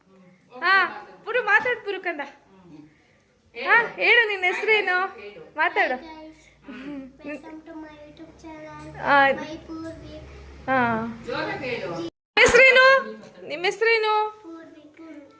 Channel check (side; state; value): both; identical; correlation 1.00